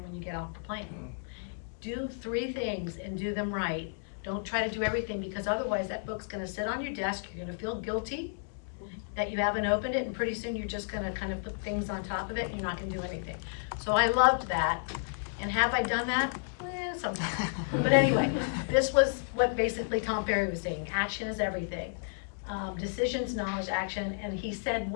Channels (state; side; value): silent; right; digital silence